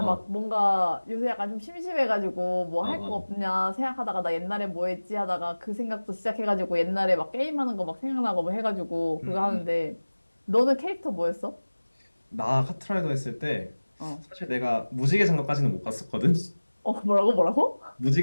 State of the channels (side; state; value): both; inverted; correlation -1.00